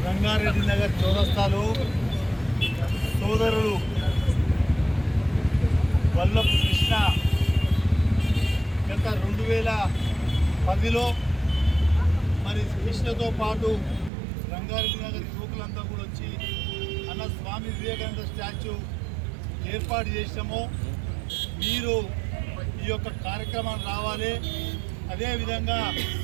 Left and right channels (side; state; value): left; drops out; at 14.1 s